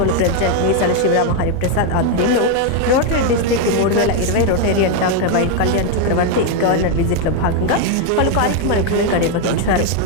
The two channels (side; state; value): both; different; correlation 0.01